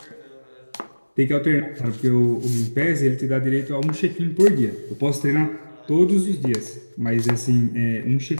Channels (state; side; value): inverted; both; correlation -1.00